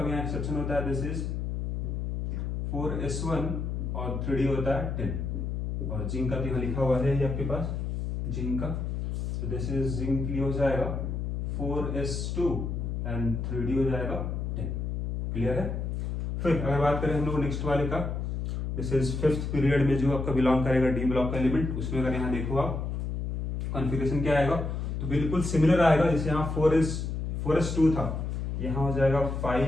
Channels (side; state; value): left; noise; hum, 3 dB below the sound